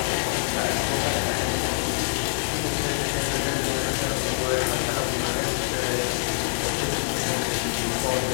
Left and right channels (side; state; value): right; silent; digital silence